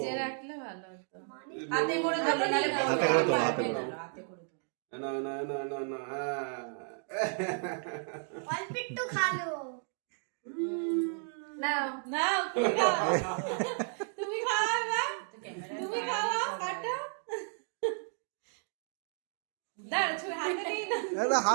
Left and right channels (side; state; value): left; silent; 56 dB below the other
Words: রাখলে ভালো হতো। হাতে করে ধরো, নালে হাতে করে ধরো, হাতে করে ধরো। হাতে করে ধরো। না না না না না, অল্প একটু খালো। নাও নাও, তুমি খাও। তুমি খাও না, তুমি খাও, কাটো। দাঁড়া, ছুরি হাতে নিয়ে না। এটা